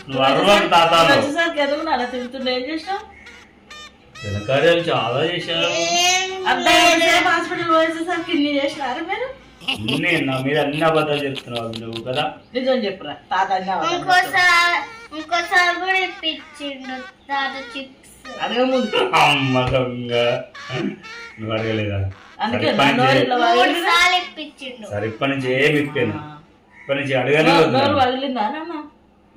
నువ్వు అరవకు తాత. ఘనకార్యాలు చాలా చేశారు. హాస్పిటల్ పోయేసరికి ఇన్ని చేసినారు మీరు. నా మీద అన్ని అబద్ధాలు చెప్తున్నావు నువ్వు కదా. నిజం చెప్పురా తాత. ఇంకోసారి కూడా ఇప్పించిండు తాత చిప్స్. అడగ ముందు అమ్మ దొంగ. నువ్వు అడగలేదా? సరే ఇప్పటి నుంచి ఏమి ఇప్పాను. ఇప్పటి నుంచి అడగాలి.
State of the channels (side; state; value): both; identical; correlation 1.00